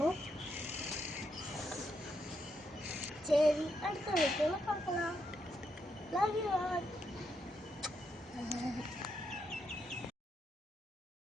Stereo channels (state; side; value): normal; both; correlation 0.80